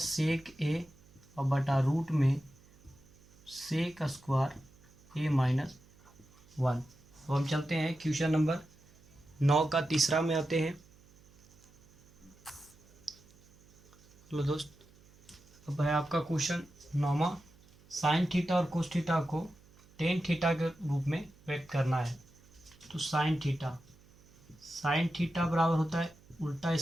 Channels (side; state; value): right; noise; hum, 27 dB below the sound